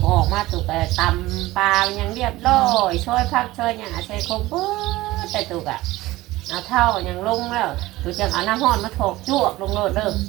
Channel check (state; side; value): quieter; left; 18.1 dB